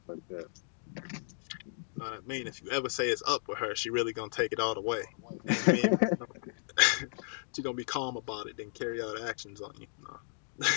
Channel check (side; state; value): right; silent; digital silence